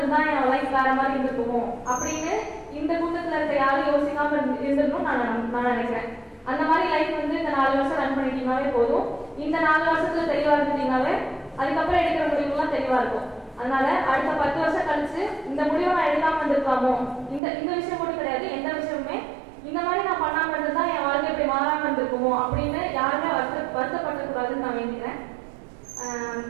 என் லைஃப் வேற மாதிரி இருந்துக்குமோ அப்படின்னு இந்த கூட்டத்துல இருக்க யாரும் யோசிக்காம இருந்திருக்கும் நான் நினைக்கிறேன். அந்த மாதிரி லைஃப் வந்து இந்த 4 வருஷம் ரன் பண்ணிட்டீங்கன்னாவே போதும். இந்த 4 வருஷத்துல தெளிவா இருந்துட்டீங்கன்னாவே அதுக்கப்புறம் எடுக்கிற முடிவுலாம் தெளிவா இருக்கும். அதனால அடுத்த 10 வருஷம் கழிச்சு இந்த முடிவை நான் எடுக்காம இருந்திருக்காமோ, இந்த விஷயம் மட்டும் கிடையாது, எந்த விஷயமுமே இந்த மாதிரி நான் பண்ணாம இருந்ததுதான் என் வாழ்க்கை இப்படி மாறாம இருந்திருக்குமோ அப்படின்னு யாருமே வருத்தப்படக்கூடாதுன்னு நான் வேண்டிக்கிறேன்.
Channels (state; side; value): drops out; left; at 17.4 s